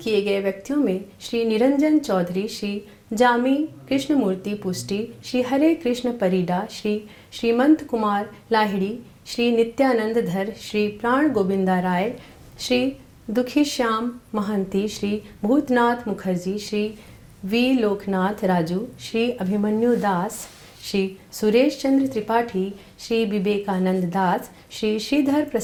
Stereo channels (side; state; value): both; identical; correlation 1.00